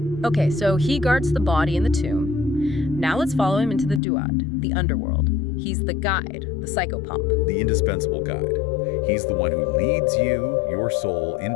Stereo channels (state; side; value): drops out; right; at 4.0 s